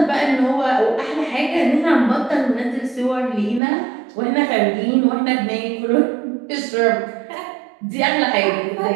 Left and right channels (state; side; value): drops out; left; at 3.6 s